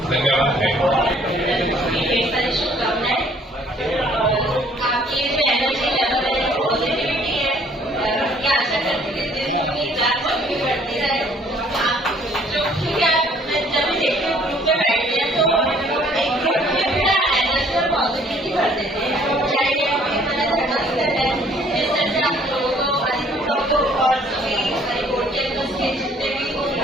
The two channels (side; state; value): both; normal; correlation 0.59